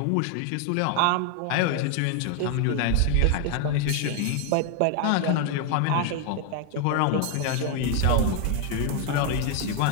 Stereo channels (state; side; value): different; both; correlation 0.00